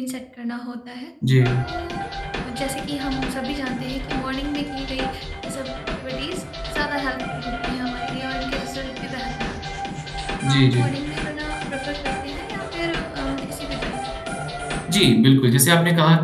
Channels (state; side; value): identical; both; correlation 1.00